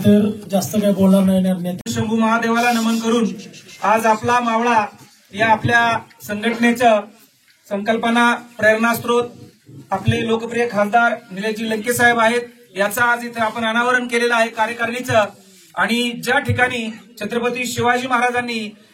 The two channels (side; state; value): both; identical; correlation 1.00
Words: तर जास्त काही बोलणार नाही. शंभू महादेवाला नमन करून आज आपला मावळा या आपल्या संघटनेचं संकल्पना प्रेरणास्त्रोत आपले लोकप्रिय खासदार निलेशजी लंके साहेब आहेत, याचं आज इथे आपण अनावरण केलेलं आहे कार्यकारिणीचं. आणि ज्या ठिकाणी छत्रपती शिवाजी महाराजांनी